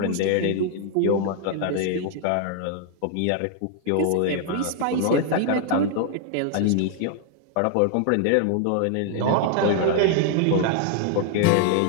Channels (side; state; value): both; different; correlation 0.00